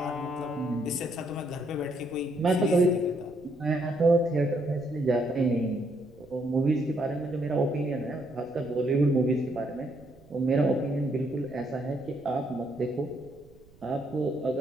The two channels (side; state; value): right; noise; rumble, 26 dB below the sound